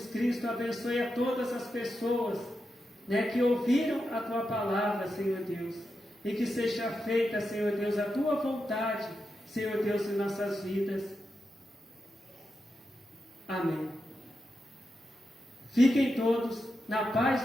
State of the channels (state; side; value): normal; both; correlation 0.88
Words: Cristo, abençoe a todas as pessoas, né, que ouviram a tua palavra, Senhor Deus, e que seja feita, Senhor Deus, a tua vontade, Senhor Deus, em nossas vidas. Amém. Fiquem todos na paz